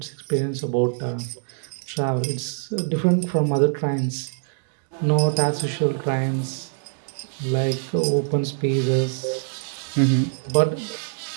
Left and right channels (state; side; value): silent; left; 63 dB below the other